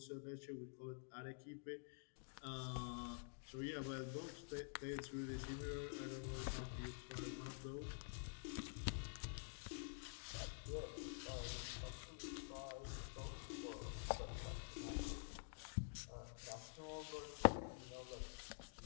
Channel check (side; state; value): right; silent; digital silence